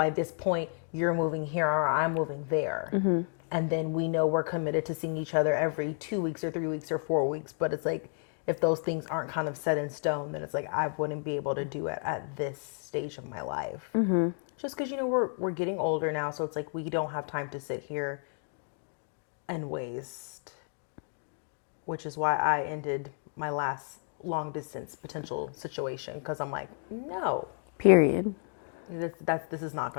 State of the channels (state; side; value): silent; right; 57 dB below the other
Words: this point, you're moving here or I'm moving there. And then we know we're committed to seeing each other every 2 weeks or 3 weeks or 4 weeks. But it's like, if those things aren't kind of set in stone, then it's like, I wouldn't be able to do it at this stage of my life. Just because, we're getting older now. So it's like, we don't have time to sit here and waste. Which is why I ended my last long distance potential situation. Because I'm like, no. Period. This is not